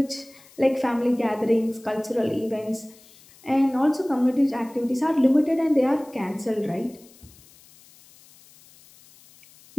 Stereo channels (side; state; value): left; noise; hiss, 26 dB below the sound